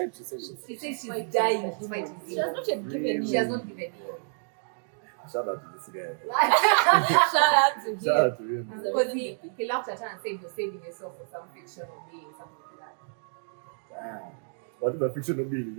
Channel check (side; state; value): left; silent; digital silence